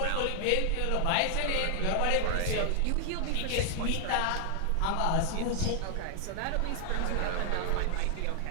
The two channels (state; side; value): different; both; correlation 0.00